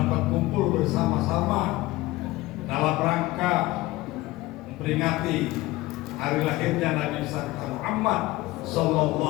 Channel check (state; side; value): quieter; right; 18.9 dB